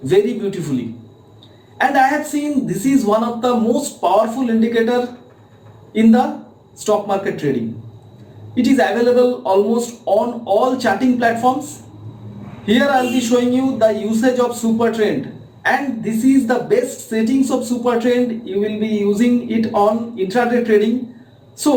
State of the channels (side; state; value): both; identical; correlation 1.00